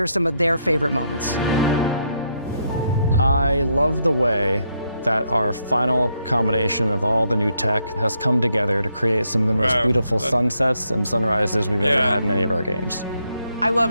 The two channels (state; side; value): inverted; both; correlation -0.77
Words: some of their favorite moments. I love the way that our final combination of all the new tech has come together to create some of the most beautiful sunsets and sunrises we've ever had in any of our games. I